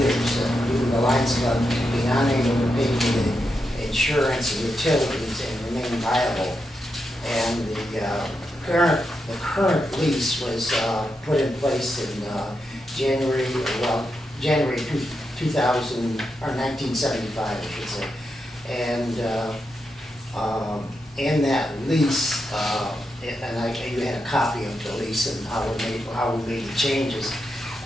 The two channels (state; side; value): normal; both; correlation 0.85